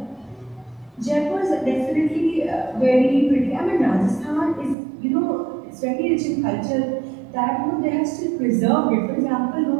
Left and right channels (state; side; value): drops out; left; at 4.8 s